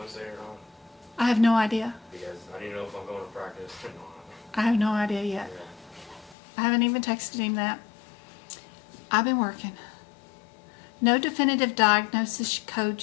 or not? I have no idea. Because I didn't know if I'm going to practice or not. I have no idea yet. Yeah. I haven't even texted him that. I've been working. No definitive diagnosis code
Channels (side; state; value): right; drops out; at 6.4 s